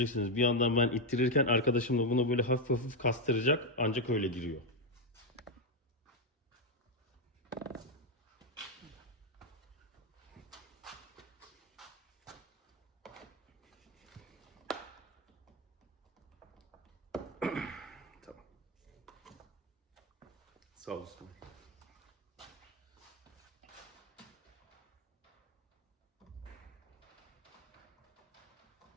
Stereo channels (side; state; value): both; normal; correlation 0.04